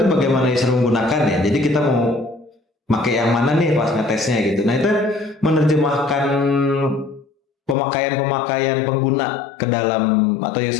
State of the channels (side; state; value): right; drops out; at 7.8 s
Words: itu bagaimana user menggunakan ya. Jadi kita mau pakai yang mana nih pas ngetesnya gitu. Nah, itu menerjemahkan pemakaian pengguna ke dalam atau